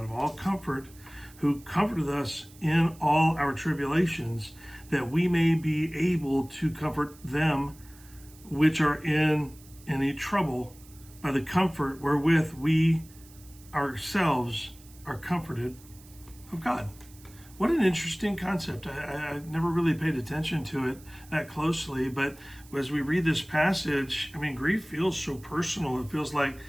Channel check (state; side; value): noise; right; hiss, 23 dB below the sound